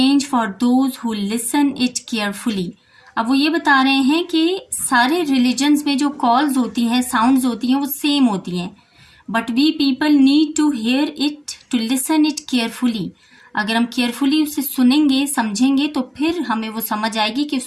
for those who listen it carefully. अब वो ये बता रहे हैं कि सारे रिलीजन्स में जो कॉल्स होती हैं, साउंड्स होती हैं, वो सेम होती हैं, but we people need to hear it, to listen it carefully. अगर हम केयरफुली उसे सुनेंगे, समझेंगे, तो फिर हमें वो समझ आएगी कि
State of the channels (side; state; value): both; identical; correlation 1.00